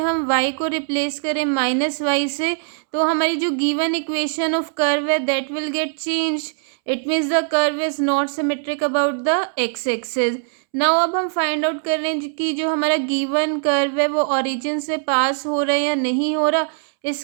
y को replace करें -y से, तो हमारी जो given equation of curve है that will get change. It means the curve is not symmetric about the x axis. Now अब हम फाइंड आउट कर रहे हैं कि जो हमारा गिवन कर्व है वो ओरिजिन से पास हो रहा है या नहीं हो रहा।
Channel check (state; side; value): silent; left; 65 dB below the other